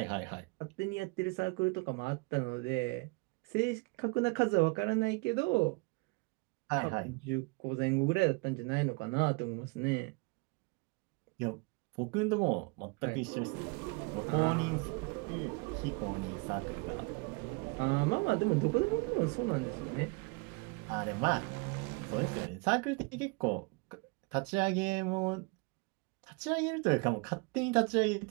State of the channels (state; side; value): quieter; left; 29.1 dB